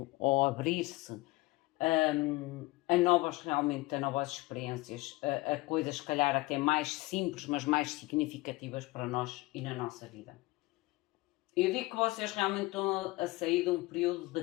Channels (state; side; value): quieter; right; 21.4 dB